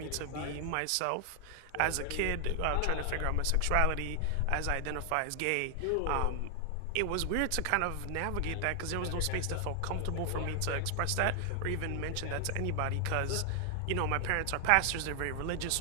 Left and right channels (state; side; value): different; both; correlation 0.00